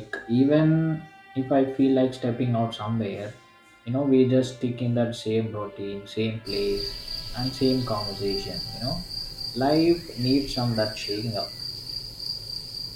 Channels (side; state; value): both; identical; correlation 1.00